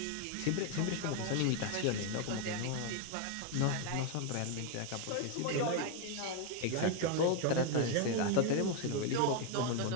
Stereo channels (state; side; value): different; both; correlation 0.01